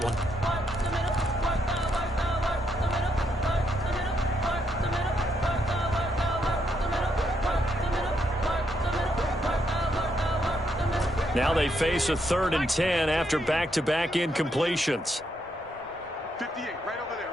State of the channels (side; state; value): both; normal; correlation 0.77